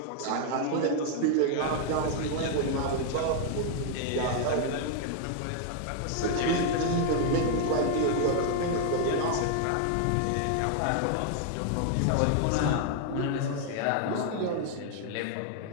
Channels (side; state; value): both; different; correlation 0.00